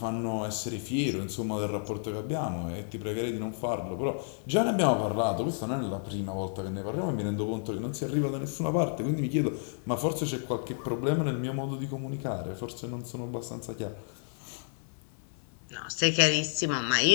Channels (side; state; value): right; silent; 57 dB below the other